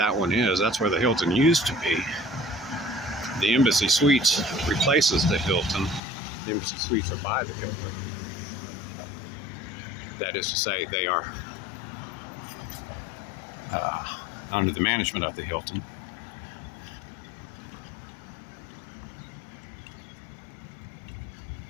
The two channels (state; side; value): drops out; right; at 6.0 s